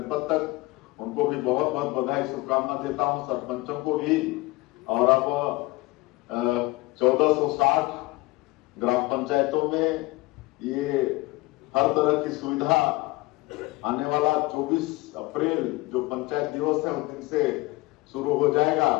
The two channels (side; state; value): right; quieter; 21.3 dB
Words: तक, उनको भी बहुत बहुत बधाई, शुभकामना देता हूं, सरपंचों को भी। और अब 1460 ग्राम पंचायतों में ये हर तरह की सुविधा आने वाला 24 अप्रैल जो पंचायत दिवस है उस दिन से शुरू हो जाएगा।